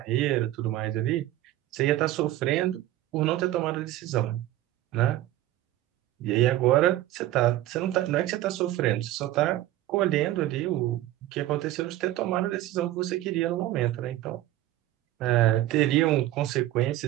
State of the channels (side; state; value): left; quieter; 14.6 dB